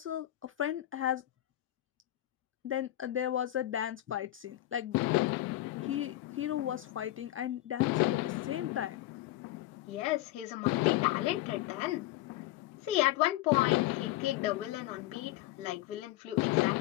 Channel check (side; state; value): right; quieter; 15.5 dB